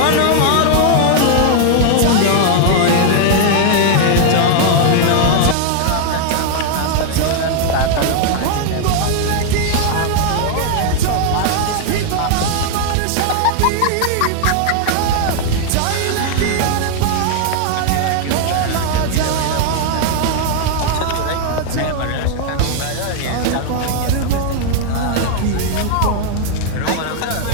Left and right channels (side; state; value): both; different; correlation 0.00